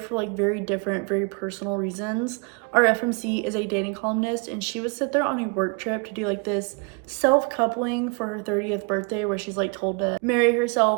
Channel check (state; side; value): quieter; left; 34.1 dB